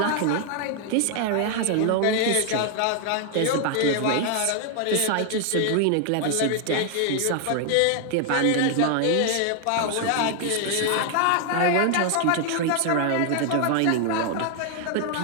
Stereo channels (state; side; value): different; both; correlation 0.00